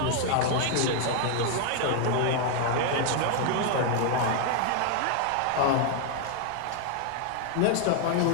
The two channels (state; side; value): different; both; correlation 0.00